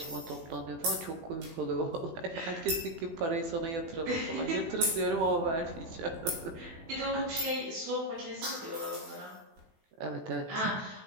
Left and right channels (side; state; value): left; late; 18 ms